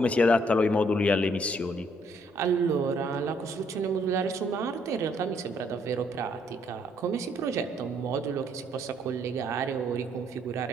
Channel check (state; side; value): normal; both; correlation 0.68